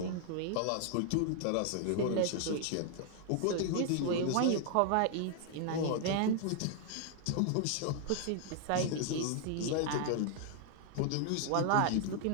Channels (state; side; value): different; both; correlation 0.00